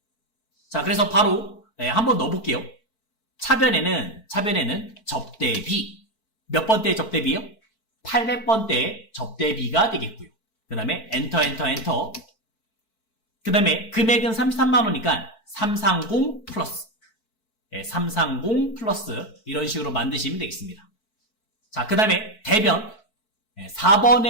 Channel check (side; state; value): right; late; 4.5 ms